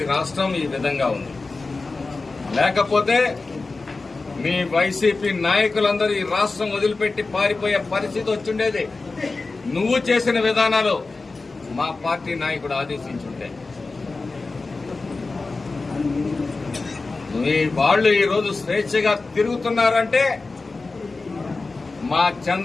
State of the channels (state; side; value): quieter; right; 3.7 dB